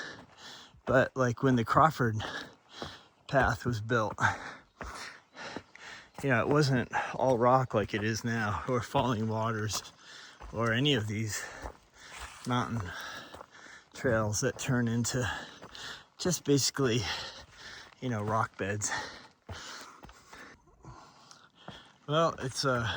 like when the Crawford path was built, it wasn't all rock like it is now, or falling waters, or any of these mountain trails that turn into just basically, rock beds. Well, it's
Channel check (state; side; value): identical; both; correlation 1.00